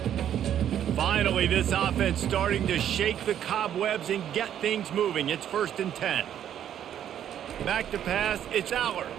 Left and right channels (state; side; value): quieter; left; 10.2 dB